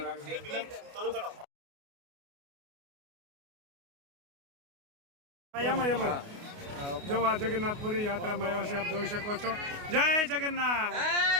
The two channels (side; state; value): left; late; 28 ms